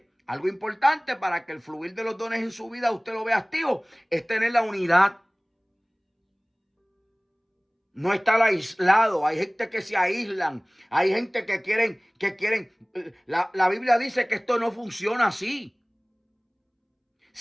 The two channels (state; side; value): identical; both; correlation 1.00